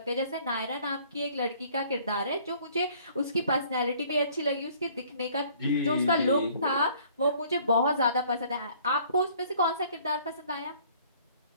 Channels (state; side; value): inverted; both; correlation -0.57